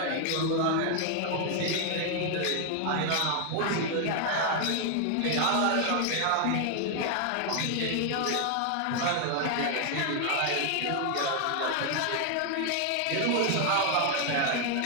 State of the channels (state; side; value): different; both; correlation 0.00